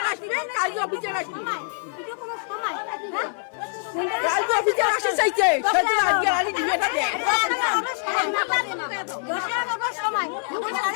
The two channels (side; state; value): right; silent; 62 dB below the other